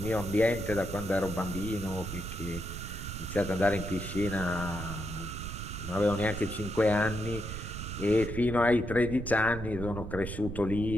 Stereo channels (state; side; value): noise; right; rumble, 7 dB below the sound